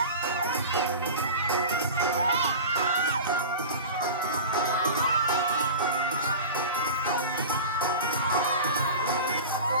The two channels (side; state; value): both; inverted; correlation -0.32